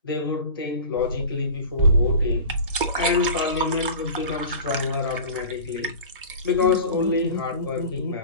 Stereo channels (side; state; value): both; inverted; correlation -0.37